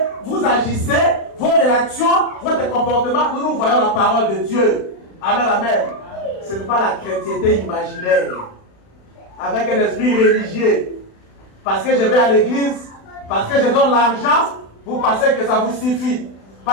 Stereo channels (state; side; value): late; right; 36 ms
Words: vous agissez, vos réactions, votre comportement, nous voyons la parole de Dieu. Amen, amen. Ce n'est pas la chrétienté imaginaire. Avec un esprit religieux. Parce que je vais à l'église, parce que je donne l'argent, vous pensez que ça vous suffit.